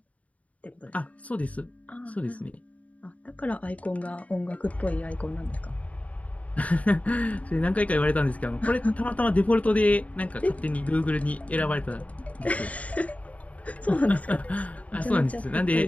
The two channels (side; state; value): right; late; 0.068 ms